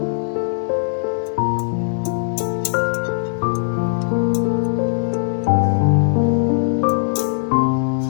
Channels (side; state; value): right; silent; 66 dB below the other